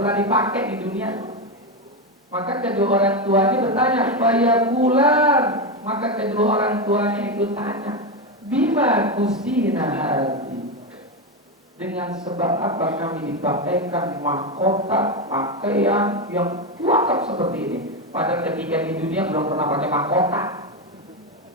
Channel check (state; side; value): normal; both; correlation 0.11